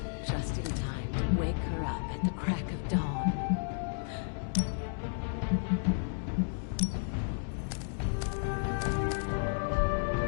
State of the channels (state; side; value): silent; right; digital silence